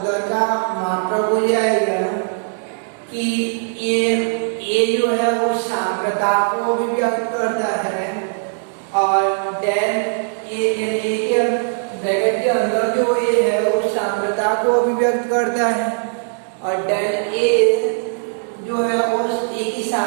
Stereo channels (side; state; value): left; silent; digital silence